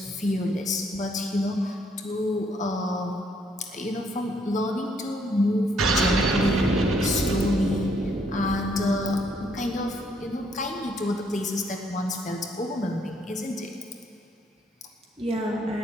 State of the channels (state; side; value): normal; both; correlation 0.69